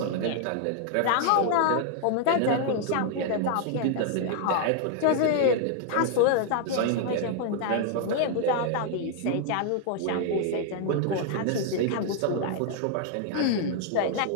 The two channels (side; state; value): both; different; correlation 0.00